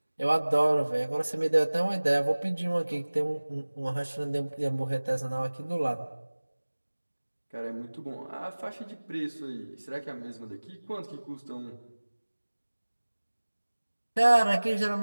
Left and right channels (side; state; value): both; inverted; correlation -1.00